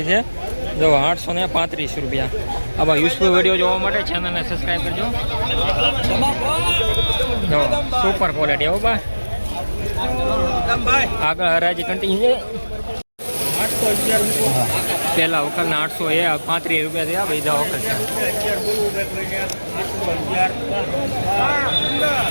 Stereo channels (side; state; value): both; inverted; correlation -1.00